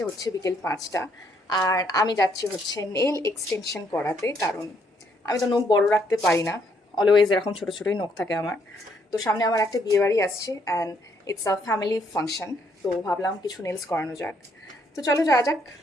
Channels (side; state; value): both; normal; correlation 0.71